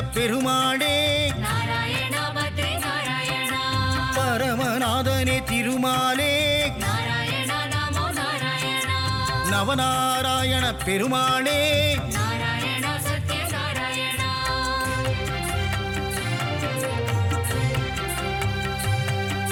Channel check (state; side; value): identical; both; correlation 1.00